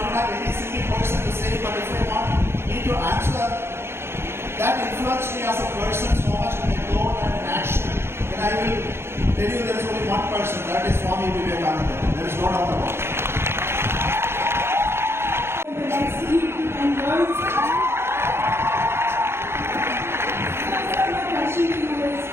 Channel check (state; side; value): late; left; 0.12 ms